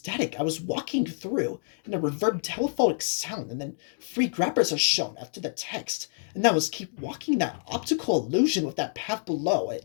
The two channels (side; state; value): right; silent; digital silence